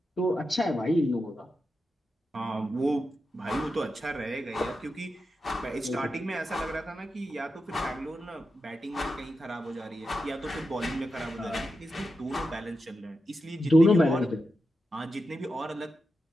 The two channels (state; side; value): normal; both; correlation 0.89